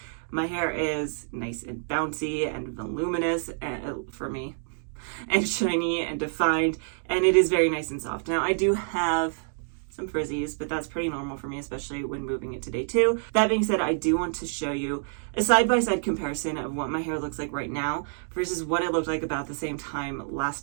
My hair is nice and bouncy and voluminous for me, and shiny and defined, and it is very nice and soft. Now, I do have some frizzies, but that's pretty normal for me, especially when moving it to day 2. That being said, I do want to show you a side-by-side comparison of what my hair looks like right now versus what it looked like about the same time last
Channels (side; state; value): left; silent; digital silence